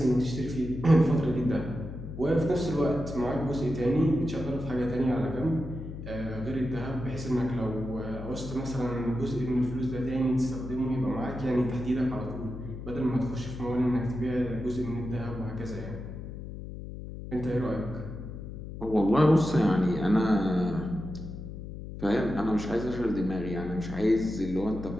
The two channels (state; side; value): noise; left; hum, 10 dB below the sound